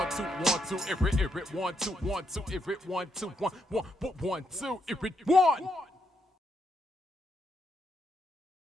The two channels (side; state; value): both; normal; correlation 0.78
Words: 2, 1, 2, it 1, 2, 1, 2, if it 1, 2, 1, 1, 1, 2, if it 1.